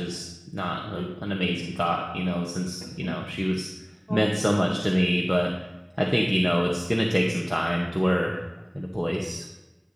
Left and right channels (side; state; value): both; identical; correlation 1.00